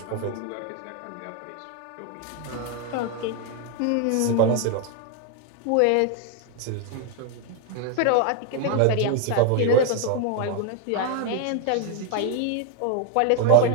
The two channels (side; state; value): both; different; correlation 0.00